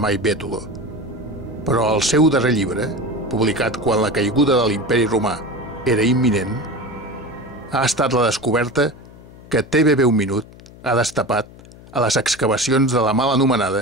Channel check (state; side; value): noise; left; hum, 20 dB below the sound